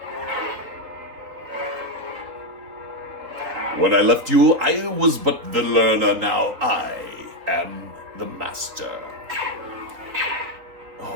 When I left you, I was but the learner. Now I am the master.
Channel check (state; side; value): late; left; 3.8 ms